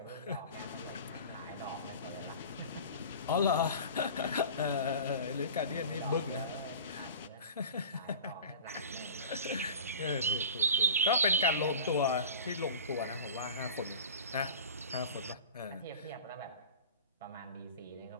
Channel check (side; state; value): both; inverted; correlation -0.37